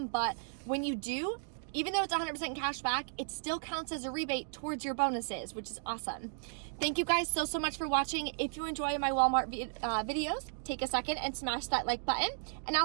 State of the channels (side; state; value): left; silent; digital silence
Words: but when you do, even though it's 100% cash back, it still counts as a rebate towards your bonuses, which is awesome. Thank you guys so much for watching. If you enjoy my Walmart videos, take a second and smash that like button, and